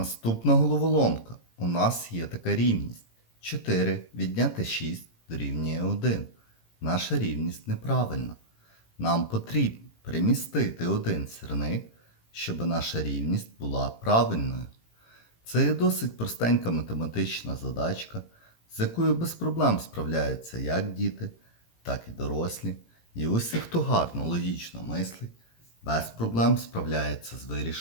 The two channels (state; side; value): late; right; 18 ms